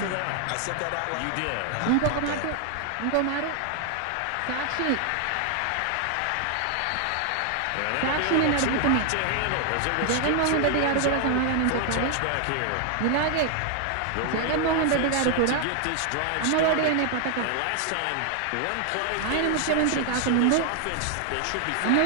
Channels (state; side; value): different; both; correlation 0.00